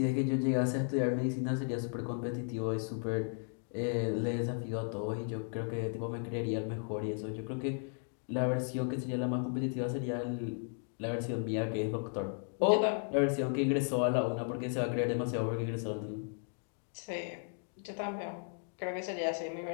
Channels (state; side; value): silent; right; 54 dB below the other